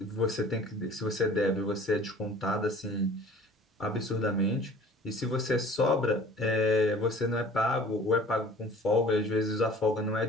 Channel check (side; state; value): both; normal; correlation 0.47